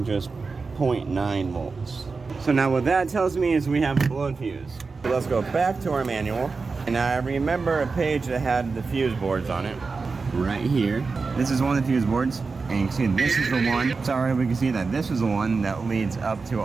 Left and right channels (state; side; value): quieter; left; 4.4 dB